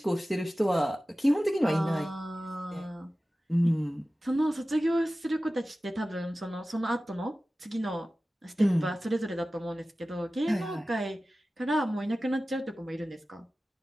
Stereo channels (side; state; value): both; normal; correlation 0.96